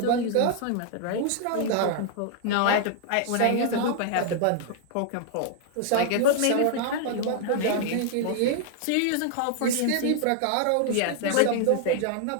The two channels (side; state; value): both; different; correlation 0.00